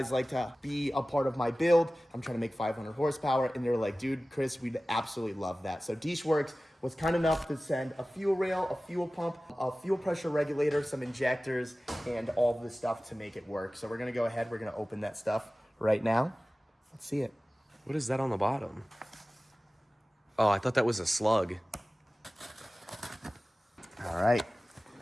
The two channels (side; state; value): both; normal; correlation 0.97